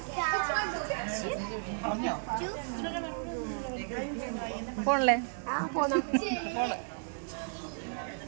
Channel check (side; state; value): left; silent; digital silence